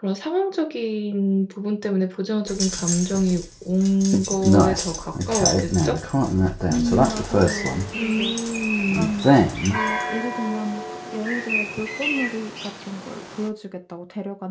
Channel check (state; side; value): identical; both; correlation 1.00